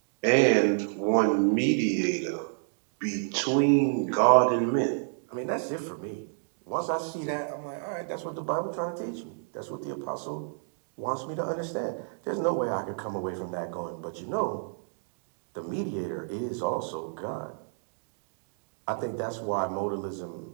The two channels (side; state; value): left; silent; digital silence